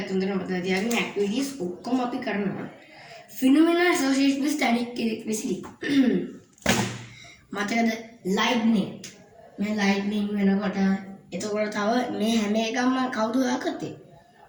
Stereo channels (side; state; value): both; identical; correlation 1.00